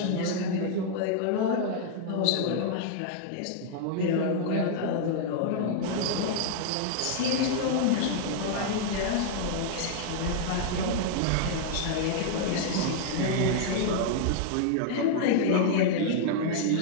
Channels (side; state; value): both; different; correlation -0.01